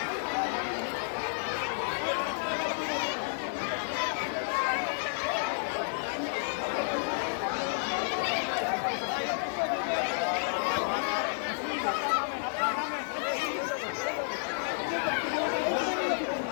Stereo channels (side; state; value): right; silent; digital silence